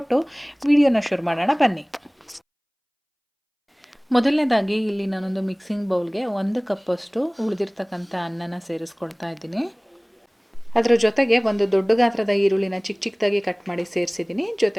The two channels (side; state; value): both; identical; correlation 1.00